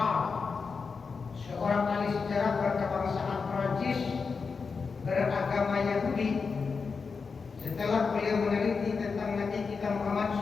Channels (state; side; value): quieter; right; 5.1 dB